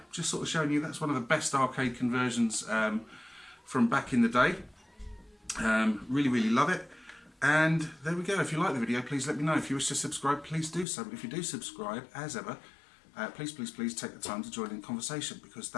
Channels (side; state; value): right; drops out; at 10.9 s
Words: just sort of showing you that's one of the best arcade conversions from back in the day. Really, really love it. And there we go. If you like the video, please let me know. If you wish to subscribe, please do so. But if you do subscribe, as ever, please, please, please take the time to join in the conversation, because